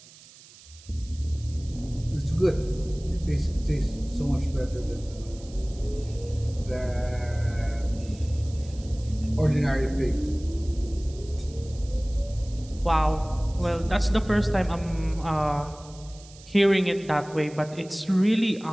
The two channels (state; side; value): noise; right; hiss, 22 dB below the sound